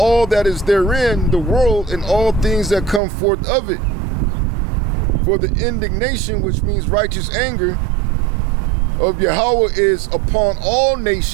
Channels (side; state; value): left; drops out; at 3.0 s